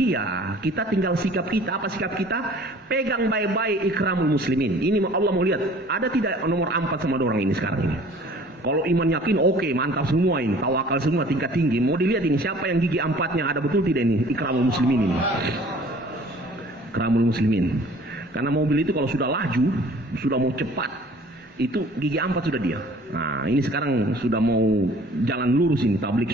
ya kita tinggal sikap kita. Apa sikap kita? Pegang baik-baik ikramul muslimin. Ini Allah mau lihat, ada tidak nomor 4 sama orang ini sekarang ini. Kalau iman yakin, oke, mantap semua ini. Tawakal semua, tingkat tinggi. Mau dilihat ini, siapa yang gigi 4-nya ada betul tidak ini? Ikramul muslimin ini. Ikramul muslimin. Karena mobil itu kalau sudah laju, sudah mau cepat, itu gigi 4 sudah dia. Nah, ini sekarang sudah mau jalan lurus ini,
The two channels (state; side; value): normal; both; correlation 0.50